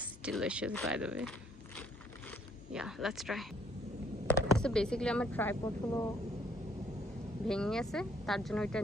delicious by the way. Yeah, let's try. So basically আমার ট্রাইপড হলো ভেঙে গেছে, তার জন্য ওইটা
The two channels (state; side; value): normal; both; correlation 0.66